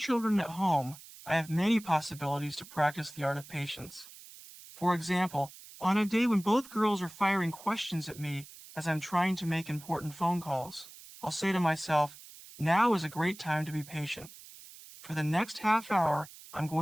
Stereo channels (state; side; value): noise; right; hiss, 18 dB below the sound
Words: at home, I have many possibilities to practice the art of patience. For example, on a day when both girls are firing questions at me as I'm trying to make important phone calls, I'll say to myself, "Now is a great time to be patient." For the next half hour, I'm